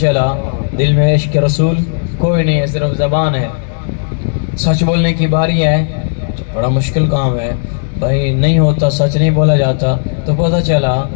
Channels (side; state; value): right; silent; digital silence